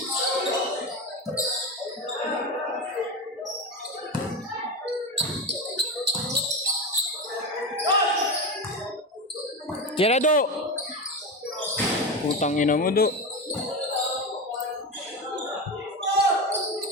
Tira do! Putang ina mo do.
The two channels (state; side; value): normal; both; correlation 0.20